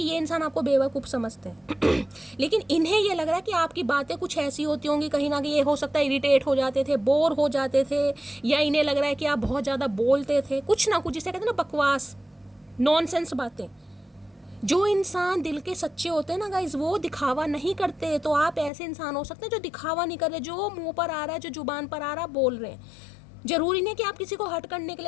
ये इंसान आपको बेवकूफ़ समझते हैं लेकिन इन्हें ये लग रहा है कि आपकी बातें कुछ ऐसी होती होंगी कहीं ना कहीं, ये हो सकता है इरिटेट हो जाते थे, बोर हो जाते थे, या इन्हें लग रहा है कि आप बहुत ज़्यादा बोलते थे कुछ ना कुछ, जिसे कहते हैं ना बकवास नॉनसेंस बातें। जो इंसान दिल के सच्चे होते हैं ना गाइज वो दिखावा नहीं करते, तो आप ऐसे इंसान हो सकते हैं जो दिखावा नहीं कर रहे, जो मुंह पर आ रहा है जो जुबान पर आ रहा है बोल रहे हैं। जरूरी नहीं कि आप किसी को हट करने के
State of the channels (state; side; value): drops out; right; at 18.7 s